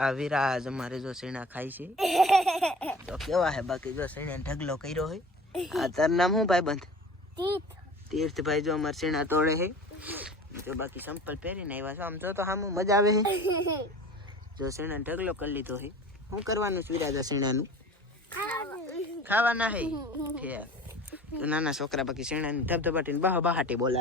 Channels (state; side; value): normal; both; correlation 0.42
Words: વિરાજ અમારે જો સીણા ખાય છે તો કેવા હે બાકી જો સીણા ઢગલો કર્યો હોય આ તાર નામ શું ભાઈ બંધ તીર્થભાઈ જો અમારે સીણા તોડે છે જો બાકી સંપલ પહેરીને આવ્યા છો આમ જો તો સામું મજા આવે છે જો સીણા ઢગલો કરી લીધો છે શું કરવાનું છે વિરાજ સીણાનું ખાવાના હે તો નાના છોકરા બાકી શેણાની ધબધબાટીને બહાટી